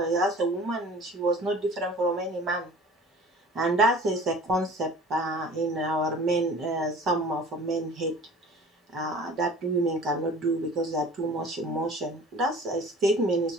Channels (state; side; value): normal; both; correlation 0.44